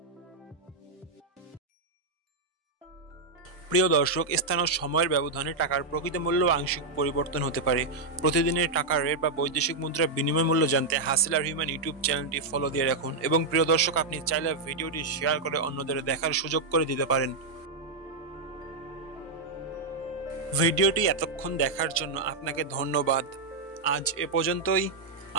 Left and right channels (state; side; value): quieter; left; 3.6 dB